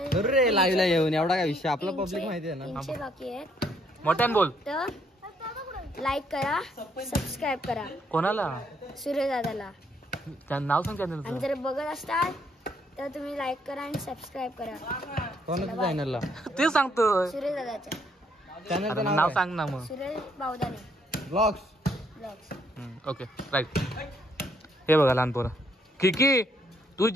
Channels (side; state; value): both; normal; correlation 0.70